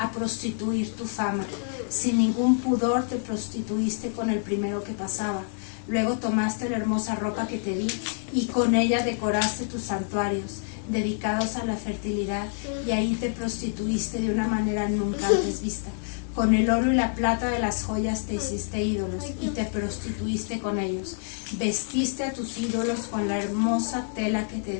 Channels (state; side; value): silent; right; 60 dB below the other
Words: prostituir tu fama. Sin ningún pudor te prostituiste con el primero que pasaba. Luego tomaste la hermosa ropa que te di y con ella decoraste tus santuarios dedicados a la fertilidad y ahí te prostituiste de una manera nunca antes vista. Con el oro y la plata de las joyas te hiciste ídolos y te prostituiste con ellos. Vestiste a tus ídolos con la hermosa tela que te